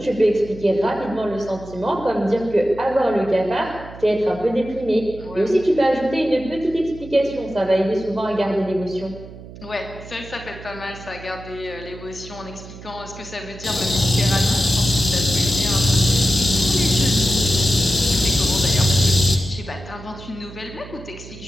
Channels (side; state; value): right; noise; hum, 16 dB below the sound